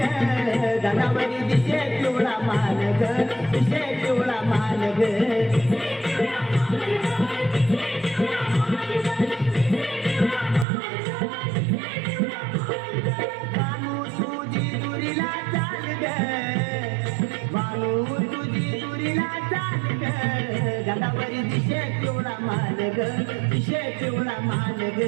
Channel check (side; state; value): left; drops out; at 10.7 s